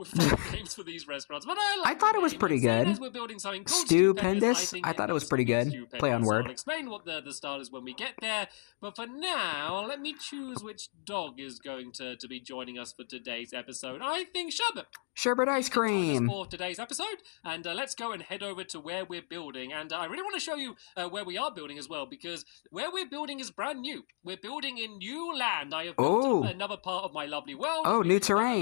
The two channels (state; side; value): silent; right; 56 dB below the other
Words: names for these restaurants, but I thought it was pretty good. We're building something called Stupendous. I thought it was pretty good. Play on word. I'll explain what the style is when we get there, but for now, let me choose which dog is going to be joining us for today's episode. I think Sherbet. Sherbet ice cream. For today's episode, and let's go and head over to where we're building. And I really want to show you where we are building as well, because where we're building is brand new. We're building in new land. I have built another part of my lovely world. Oh, new